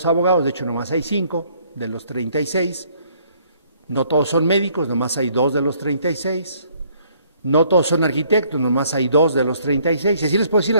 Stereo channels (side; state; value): both; inverted; correlation -0.63